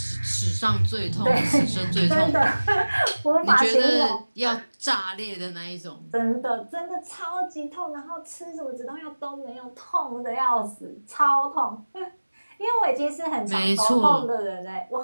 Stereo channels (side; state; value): both; inverted; correlation -1.00